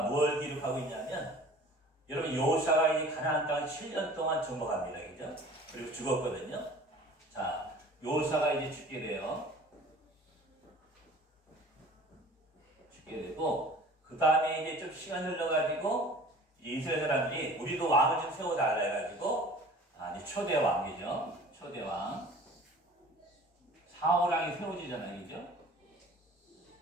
뭘 기록하고 있냐면 여러분 여호사가 이 가나안 땅을 7년 동안 정복합니다. 그죠? 그리고 죽었거든요. 자, 여호사가 이제 죽게 돼요. 죽게 되고 그 다음에 이제 좀 시간 흘러가지고 이스라엘 사람들이 우리도 왕을 좀 세워달라 해가지고 이제 초대 왕이죠. 초대 왕 사울 왕이 세워지잖아요. 그죠?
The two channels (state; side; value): normal; both; correlation 0.46